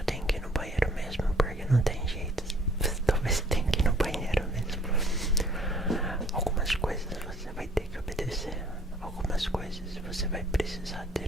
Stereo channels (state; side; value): normal; both; correlation 0.57